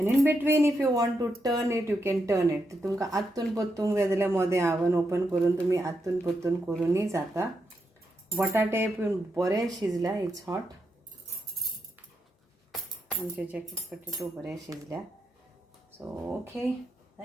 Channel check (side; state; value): both; normal; correlation 0.83